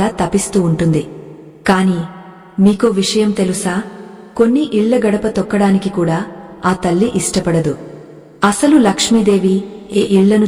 తపిస్తూ ఉంటుంది. కాని మీకో విషయం తెలుసా? కొన్ని ఇళ్ల గడప తొక్కడానికి కూడా ఆ తల్లి ఇష్టపడదు. అసలు లక్ష్మీదేవి ఏ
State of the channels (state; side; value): identical; both; correlation 1.00